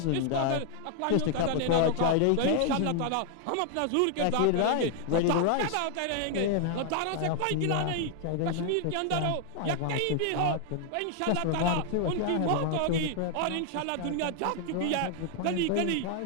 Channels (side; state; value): both; different; correlation 0.00